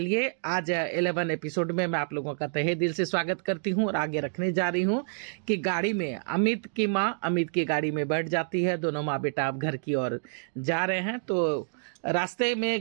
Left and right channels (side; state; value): left; silent; digital silence